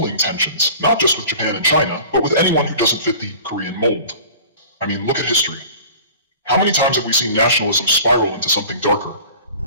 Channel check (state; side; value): inverted; both; correlation -0.43